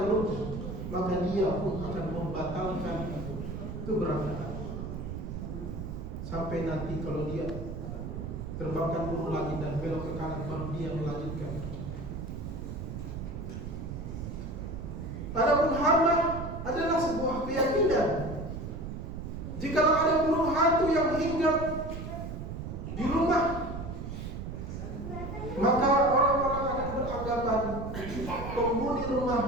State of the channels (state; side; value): noise; right; rumble, 7 dB below the sound